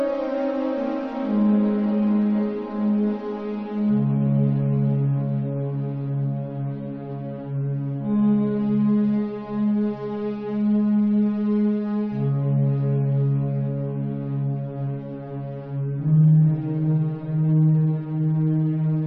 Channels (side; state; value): both; identical; correlation 1.00